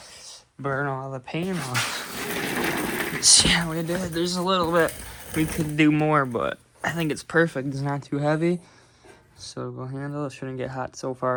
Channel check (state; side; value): identical; both; correlation 1.00